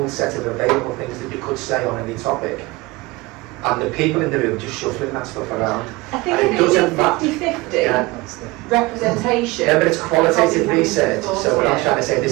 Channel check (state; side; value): quieter; left; 21.9 dB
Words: set of available things that you could say on any topic. And the people in the room just shuffling that stuff around. I think it doesn't 50-50 representation. Yeah, but it's qualitative research. So we're not trying to say